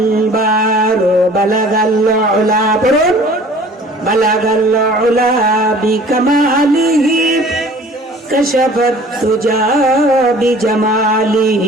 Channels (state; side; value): normal; both; correlation 0.49